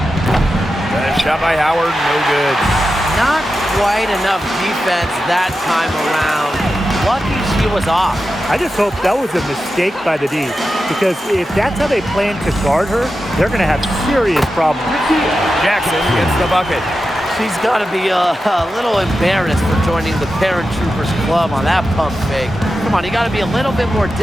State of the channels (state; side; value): normal; both; correlation 0.91